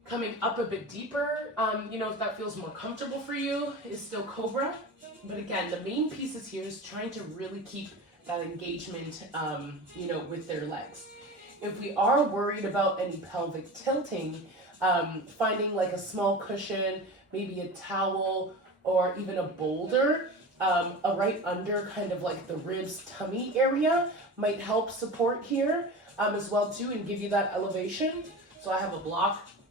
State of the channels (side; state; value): both; normal; correlation 0.31